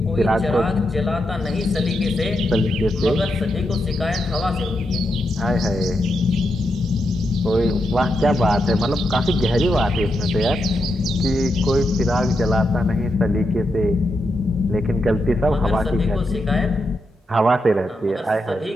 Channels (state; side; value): normal; both; correlation 0.84